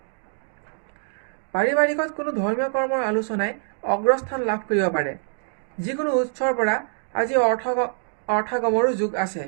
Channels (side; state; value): left; silent; digital silence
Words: পাৰিবাৰিকত কোনো ধৰ্মীয় কৰ্মৰ আলোচনাই অগ্ৰস্থান লাভ কৰিব পাৰে। যিকোনো উৎসৰ পৰা আজি অৰ্থগমৰো যোগ আছে।